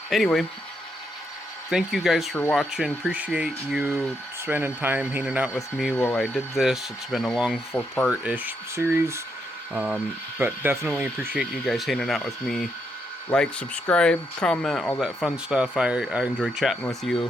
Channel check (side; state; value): both; normal; correlation 0.79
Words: Anyway, thank you guys for watching. Appreciate you spending time hanging out with me while I did this. It's been a long 4-part-ish series, but definitely appreciate you guys hanging out with me. Like, subscribe, comment, all that fun stuff. I enjoy chatting with